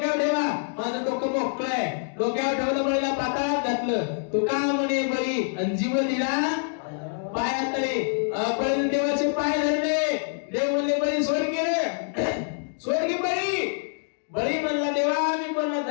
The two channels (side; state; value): right; silent; digital silence